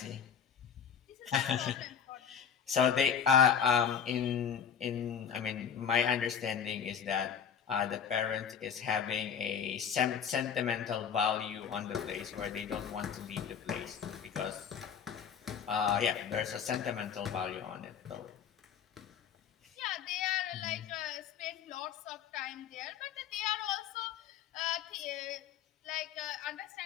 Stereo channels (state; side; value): quieter; right; 7.7 dB